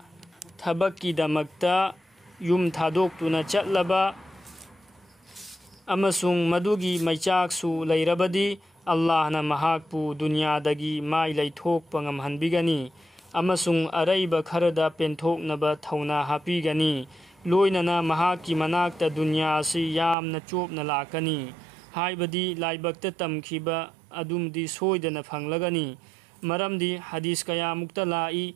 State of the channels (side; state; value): left; drops out; at 20.2 s